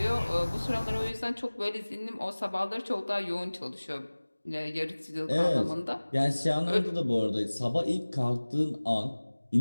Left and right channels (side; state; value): both; inverted; correlation -1.00